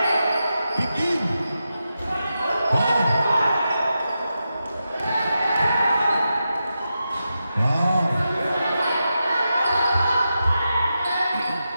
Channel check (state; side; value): inverted; both; correlation -0.89